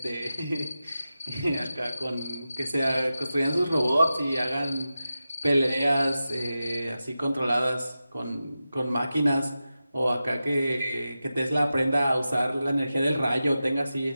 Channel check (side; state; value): both; inverted; correlation -0.92